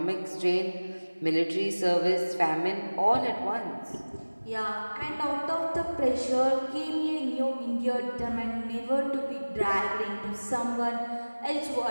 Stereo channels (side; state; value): both; inverted; correlation -1.00